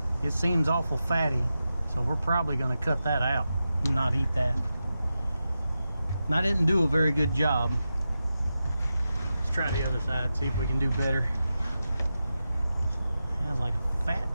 it seems awful fatty, so we're probably going to cut that out and not eat that. And I didn't do a very good job. Let's try the other side, see if we can do better. There's like a fat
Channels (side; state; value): both; inverted; correlation -0.91